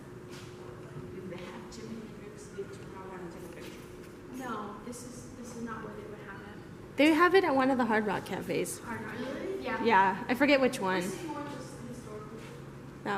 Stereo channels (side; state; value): both; identical; correlation 1.00